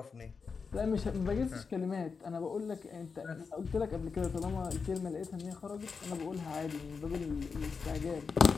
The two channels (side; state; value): right; quieter; 5.2 dB